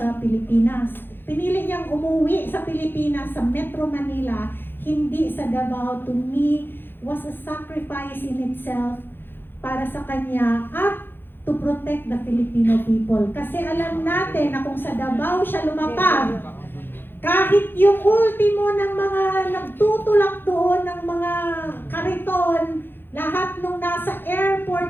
Pilipinas. Pinili niyang umuwi sa Pilipinas, sa Metro Manila, hindi sa Davao. To me, was a sacrifice in itself para sa kanya at to protect the Filipino people. Kasi alam natin na kung sa Davao siya lumapag, kahit yung ultimo ng mga nagtutulak doon ng mga kariton, lahat nung nasa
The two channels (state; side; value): late; right; 0.10 ms